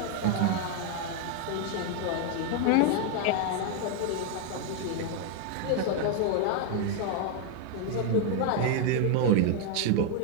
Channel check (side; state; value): both; different; correlation 0.00